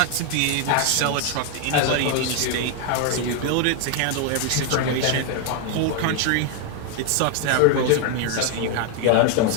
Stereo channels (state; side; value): different; both; correlation 0.01